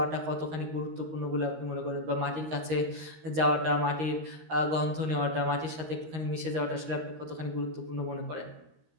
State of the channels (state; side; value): late; left; 13 ms